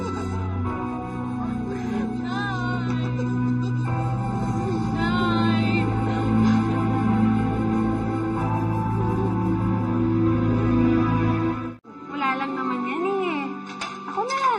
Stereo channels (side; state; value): both; identical; correlation 1.00